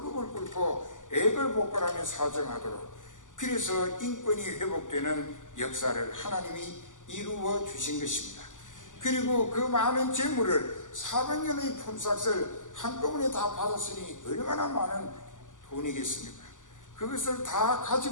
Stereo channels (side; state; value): right; late; 0.87 ms